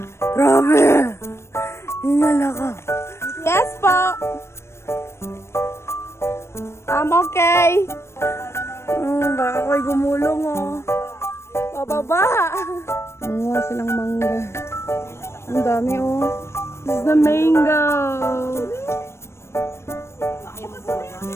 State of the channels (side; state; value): right; late; 0.13 ms